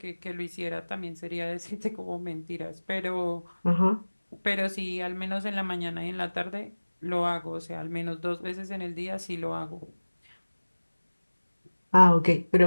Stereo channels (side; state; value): both; inverted; correlation -1.00